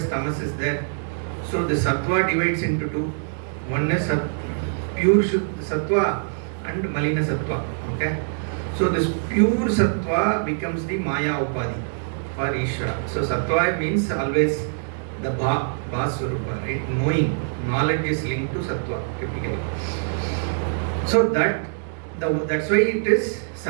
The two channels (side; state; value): left; silent; digital silence